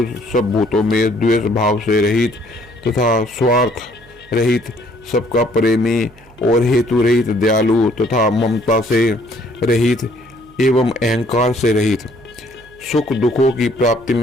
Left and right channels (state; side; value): noise; right; hum, 26 dB below the sound